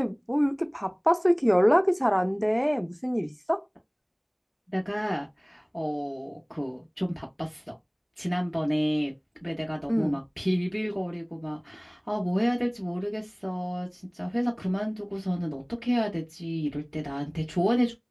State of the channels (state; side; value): identical; both; correlation 1.00